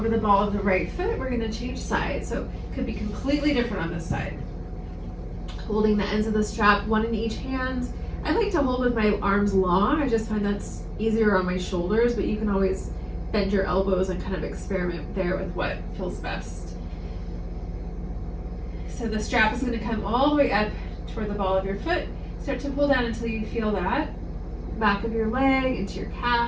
the ball of the right foot. We're going to change sides, so it could be completely different on this side. Holding the ends of the strap, one in each hand. I like to hold with my arms long. I just find that's easier on my shoulders, but you can always bend your elbows and kind of experiment there with what feels best. so the strap is going to come all the way up toward the ball of your foot. Start to pull down until you feel that back of your leg into your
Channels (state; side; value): identical; both; correlation 1.00